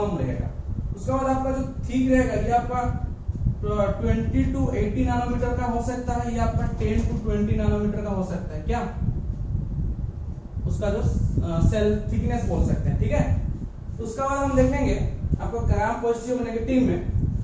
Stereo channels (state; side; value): identical; both; correlation 1.00